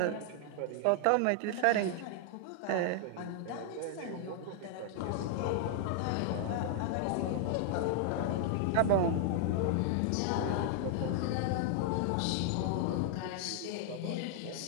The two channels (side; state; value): both; different; correlation 0.00